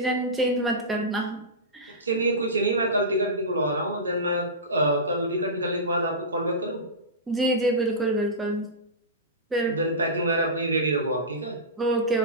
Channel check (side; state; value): both; normal; correlation -0.17